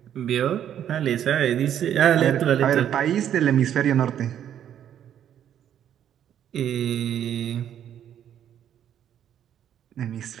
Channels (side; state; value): left; quieter; 10.0 dB